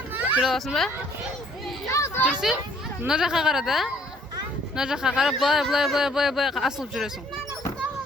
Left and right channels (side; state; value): both; normal; correlation 0.60